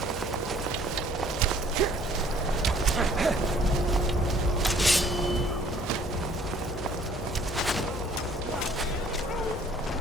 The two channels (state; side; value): normal; both; correlation 0.57